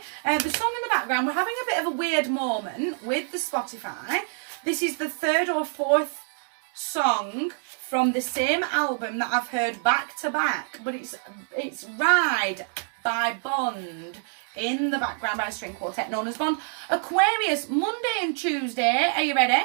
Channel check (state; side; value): silent; left; 61 dB below the other